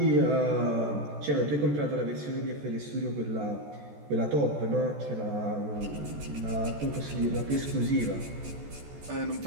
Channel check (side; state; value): left; late; 14 ms